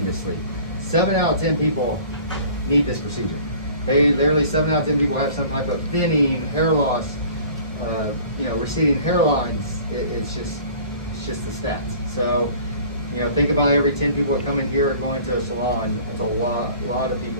7 out of 10 people need this procedure. They literally 7 out of 10 people have some type of thinning, hair loss, you know, receding hairlines. It's just the stats. So, you know, think about every 10 people that come in here are going to a salon. It's a lot of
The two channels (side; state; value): both; inverted; correlation -0.48